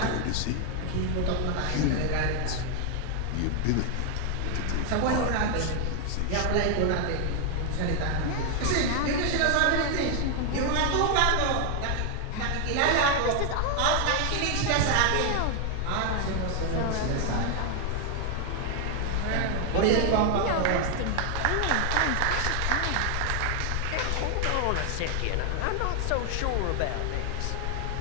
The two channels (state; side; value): different; both; correlation 0.00